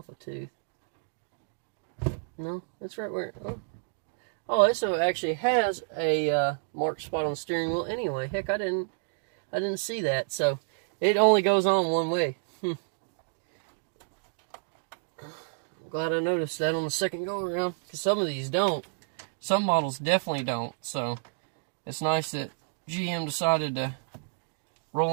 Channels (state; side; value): silent; left; digital silence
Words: a tooth. No, that's right where. Oh, this actually has a marked spot on the steering wheel. Anyway, heck, I didn't see that. So it only goes on one way. I'm glad I noticed that on the second go around, because some of these don't. Some models definitely don't. So it's nice that GM decided to roll